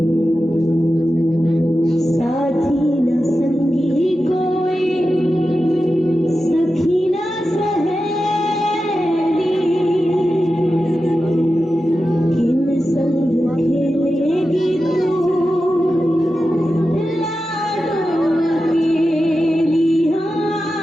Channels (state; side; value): normal; both; correlation 0.92